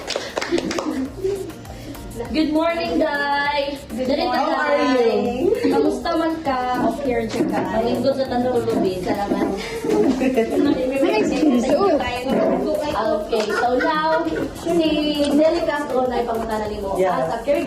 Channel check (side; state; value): both; identical; correlation 1.00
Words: Good morning, guys. Good morning, How are you? Kamusta man ka? Okay, ka. Malingkod sa tanulubi. Salamat. Okay, so now, si Nelly Castro na ipangutanan mo Yeah. as a